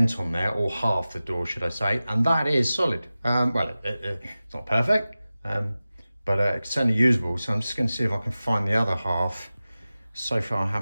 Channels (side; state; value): both; inverted; correlation -0.96